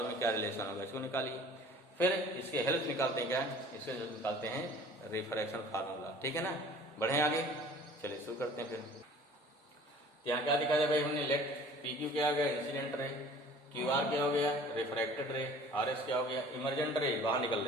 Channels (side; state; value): both; normal; correlation 0.47